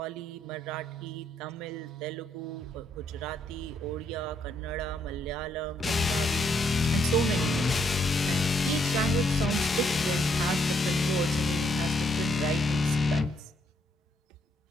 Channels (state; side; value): normal; both; correlation 0.73